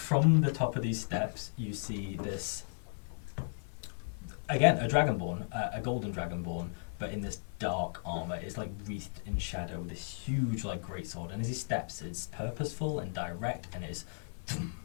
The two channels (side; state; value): right; silent; 54 dB below the other